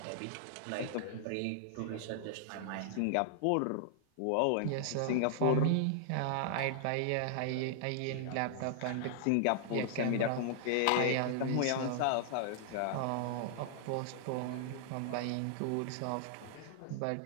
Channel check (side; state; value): both; different; correlation -0.01